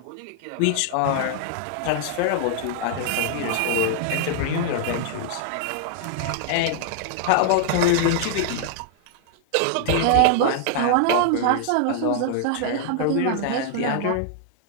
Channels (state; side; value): different; both; correlation -0.01